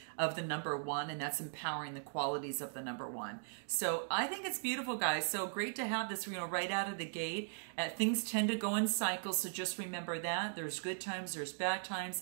of the number 1, and that's empowering the qualities of the number 1. So I think it's beautiful, guys. So great to have this, right out of the gate. Things tend to go in cycles, so just remember that. There's good times, there's bad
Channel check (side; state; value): left; silent; digital silence